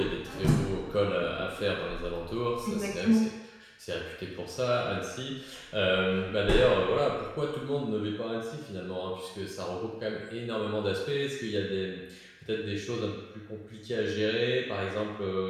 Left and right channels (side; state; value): both; identical; correlation 1.00